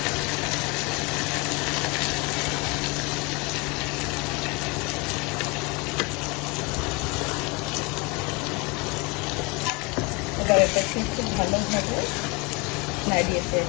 এবার এটাকে খুব ভালোভাবে নাড়িয়ে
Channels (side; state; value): right; quieter; 27.6 dB